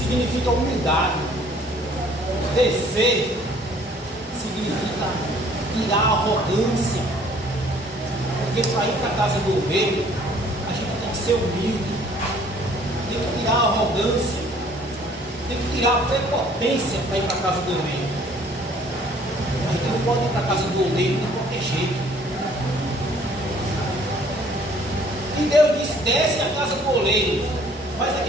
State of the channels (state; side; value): normal; both; correlation 0.57